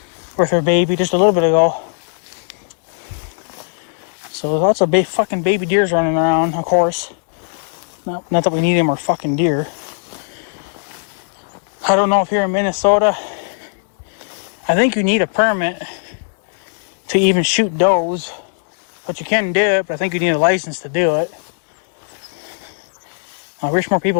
with her baby just a little bit ago. So lots of fucking baby deers running around, of course. Not that we need any more fucking deer. I don't know if here in Minnesota, I think you need a permit to even shoot does, but you can do it, but I think you need a license to do it. I wish more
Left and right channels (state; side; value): silent; right; digital silence